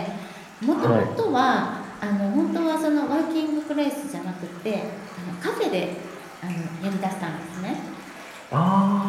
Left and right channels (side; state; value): both; identical; correlation 1.00